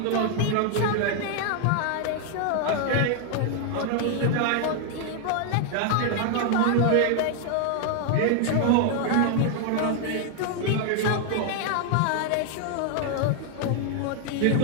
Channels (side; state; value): both; different; correlation 0.00